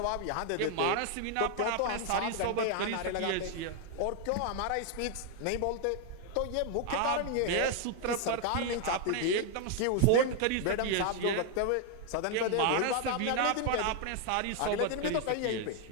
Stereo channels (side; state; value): both; different; correlation 0.00